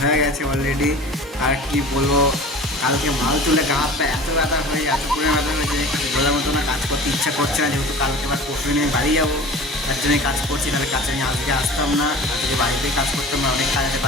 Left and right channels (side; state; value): both; normal; correlation 0.40